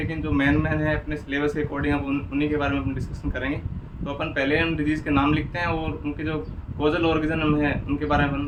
जो मेन है अपने सिलेबस के अकॉर्डिंग हम उन्हीं के बारे में अपन डिस्कशन करेंगे। तो अपन पहले हम डिजीज़ के नाम लिखते हैं और उनके जो कोजल ऑर्गेनिज्म है उनके बारे में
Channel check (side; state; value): both; identical; correlation 1.00